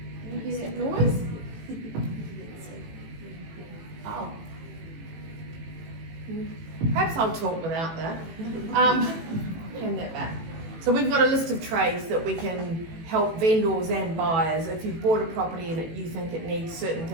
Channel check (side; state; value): left; late; 18 ms